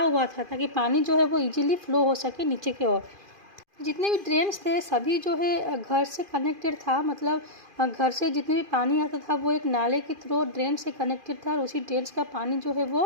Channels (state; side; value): late; left; 2.5 ms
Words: हुआ था ताकि पानी जो है वो इजीली फ्लो हो सके नीचे की ओर। जितने भी ड्रेन्स थे सभी जो है घर से कनेक्टेड था, मतलब घर से जितने भी पानी आता था वो एक नाले के थ्रू ड्रेन से कनेक्टेड था, और उसी ड्रेन का पानी जो है